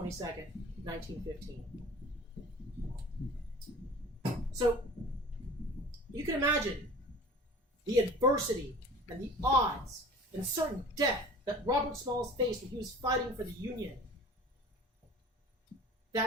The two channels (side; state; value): both; normal; correlation 0.42